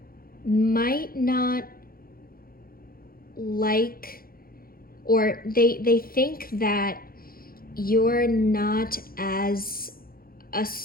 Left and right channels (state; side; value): late; right; 0.43 ms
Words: might not like, or they think that you're not as